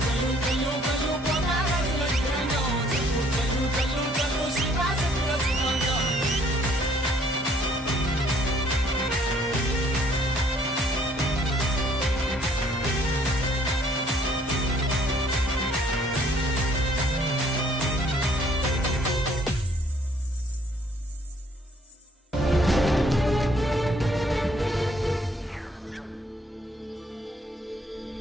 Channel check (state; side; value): normal; both; correlation 0.62